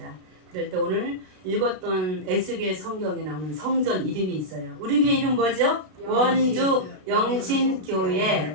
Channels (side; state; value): left; late; 32 ms